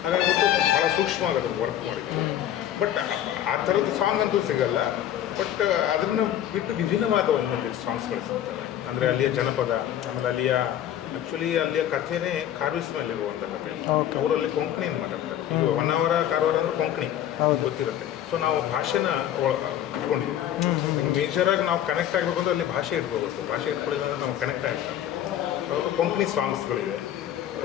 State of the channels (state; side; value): quieter; right; 11.2 dB